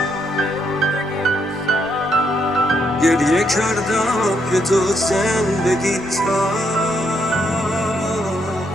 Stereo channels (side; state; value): both; normal; correlation 0.76